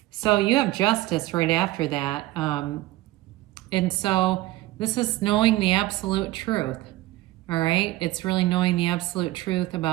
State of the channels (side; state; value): left; quieter; 17.4 dB